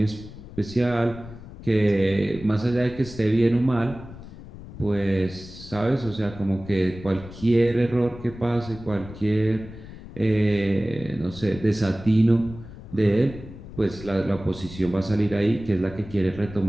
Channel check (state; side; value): noise; left; rumble, 15 dB below the sound